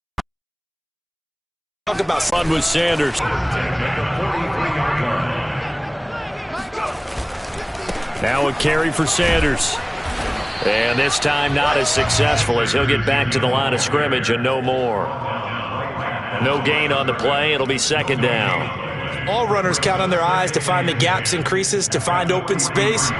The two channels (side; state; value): both; identical; correlation 1.00